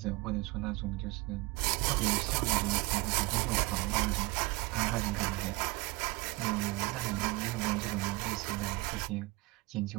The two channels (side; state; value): left; quieter; 23.2 dB